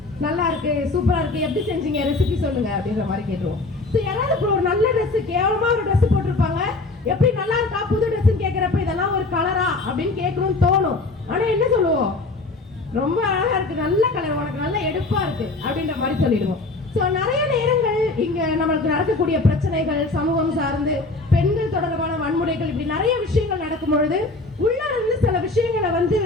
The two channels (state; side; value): quieter; right; 3.3 dB